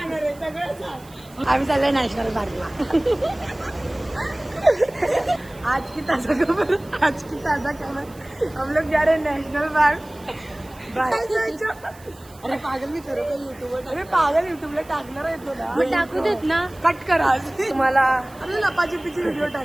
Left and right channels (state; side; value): noise; right; hiss, 24 dB below the sound